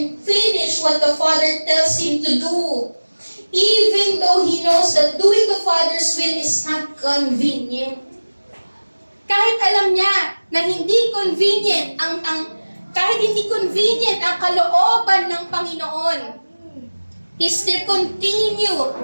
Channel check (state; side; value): inverted; both; correlation -1.00